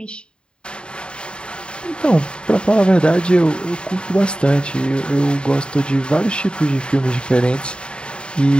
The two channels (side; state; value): right; late; 0.052 ms